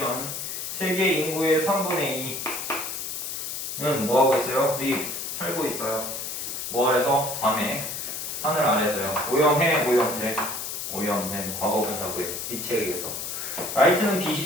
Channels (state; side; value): noise; left; hiss, 5 dB below the sound